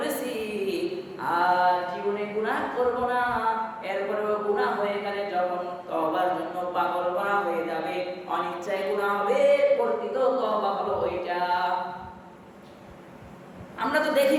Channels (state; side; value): identical; both; correlation 1.00